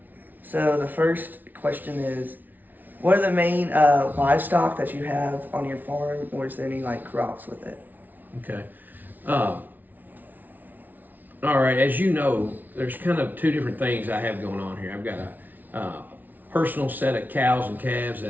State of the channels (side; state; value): left; late; 0.083 ms